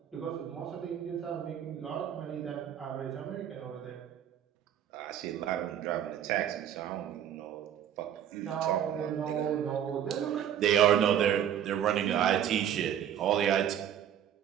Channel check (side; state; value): left; quieter; 9.9 dB